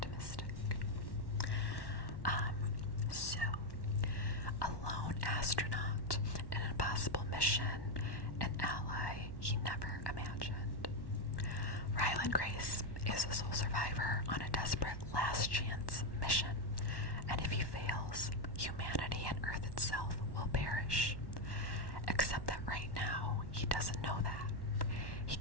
So, a lone astronaut in an impossible mission, an ally he never imagined. Ryland Grace is a sole survivor on a desperate last chance mission, and if he fails, humanity and Earth itself will perish. Except that right now, he doesn't know that. He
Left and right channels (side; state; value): right; late; 1.1 ms